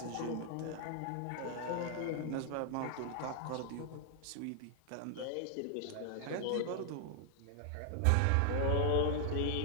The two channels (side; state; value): both; different; correlation 0.00